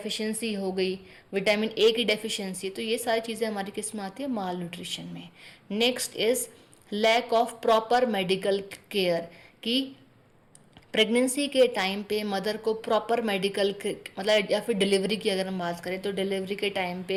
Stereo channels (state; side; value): identical; both; correlation 1.00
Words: हो गई, विटामिन ए की डेफिशिएंसी, तो ये सारी चीज़ें हमारी किस में आती है, माल न्यूट्रिशन में। Next is lack of proper medical care, कि प्रेगनेंसी के टाइम पे मदर को प्रॉपर मेडिकल, मतलब या फिर डिलीवरी की अगर हम बात करें तो डिलीवरी के टाइम